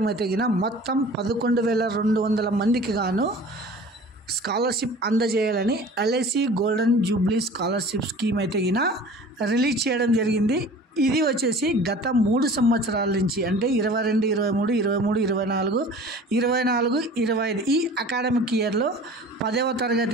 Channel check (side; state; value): both; normal; correlation 0.43